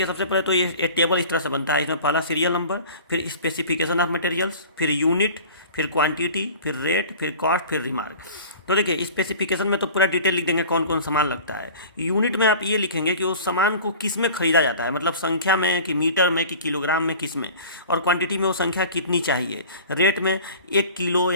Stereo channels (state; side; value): inverted; both; correlation -0.41